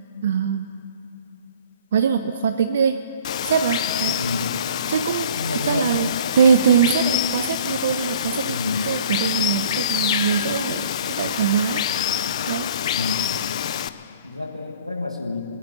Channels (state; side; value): inverted; both; correlation -0.50